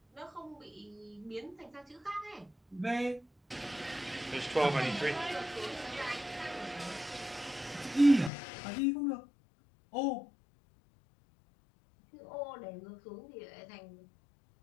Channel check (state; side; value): drops out; right; at 8.3 s